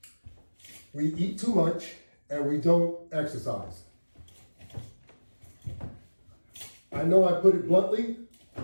We eat too much and we don't exercise. I know I put it bluntly,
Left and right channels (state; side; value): inverted; both; correlation -1.00